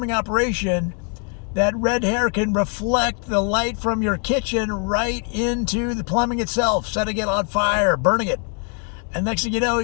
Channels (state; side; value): quieter; right; 37.1 dB